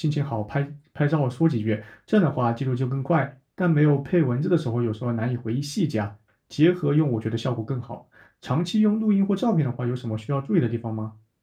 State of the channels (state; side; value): identical; both; correlation 1.00